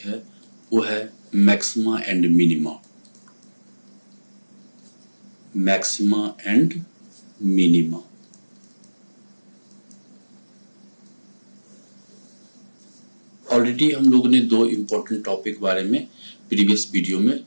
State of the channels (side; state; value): both; inverted; correlation -1.00